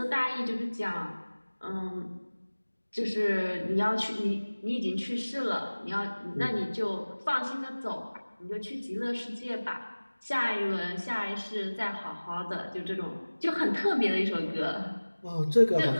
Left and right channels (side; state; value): both; inverted; correlation -1.00